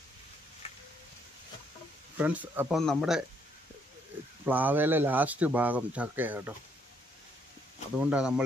ഫ്രണ്ട്സ്, അപ്പം നമ്മുടെ പ്ലാവയിലെ ലാസ്റ്റ് ഭാഗം ചക്കയാണ് കേട്ടോ. അതുകൊണ്ടാണ്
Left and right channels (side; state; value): both; normal; correlation 0.71